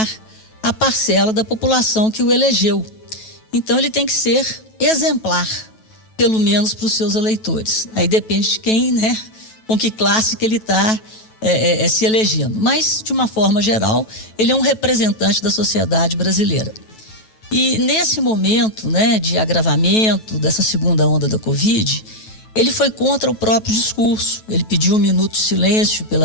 a parcela da população que o elegeu. Então, ele tem que ser exemplar, pelo menos para os seus eleitores. Aí depende de quem, né, com que classe que ele está se elegendo. Mas, de uma forma geral, ele é um representante da sociedade brasileira. E nesse momento, né, de agravamento dessa segunda onda da Covid, ele foi contra o próprio discurso. Ele pediu 1 minuto de silêncio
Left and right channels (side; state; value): right; late; 9.2 ms